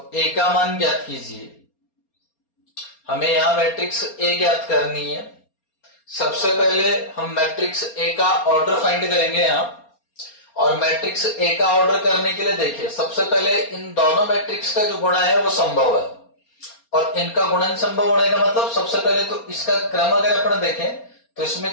a का मान ज्ञात कीजिए। हमें यहां मैट्रिक्स ए ज्ञात करनी है। सबसे पहले हम मैट्रिक्स ए का ऑर्डर फाइंड करेंगे यहां, और मैट्रिक्स ए का ऑर्डर करने के लिए देखिए, सबसे पहले इन दोनों मैट्रिक्स का जो गुणा है वो संभव है, और इनका गुणन संभव होने का मतलब सबसे पहले तो इसका क्रम अगर अपन देखें तो इसमें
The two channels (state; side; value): late; right; 4.3 ms